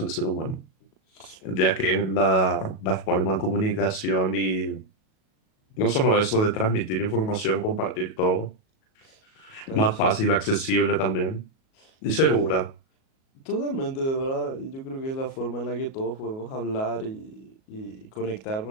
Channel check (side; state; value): right; late; 37 ms